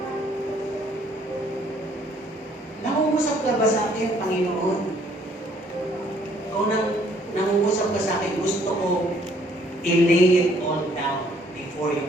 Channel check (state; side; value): normal; both; correlation 0.63